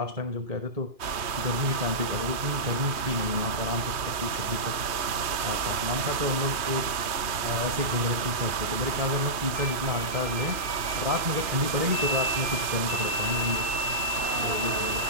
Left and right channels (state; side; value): late; left; 2.4 ms